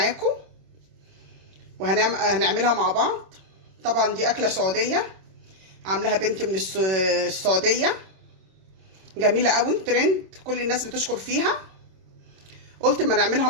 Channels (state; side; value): late; left; 26 ms